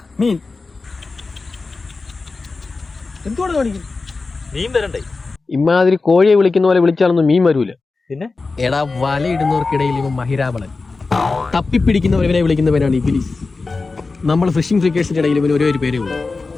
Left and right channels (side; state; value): right; quieter; 3.9 dB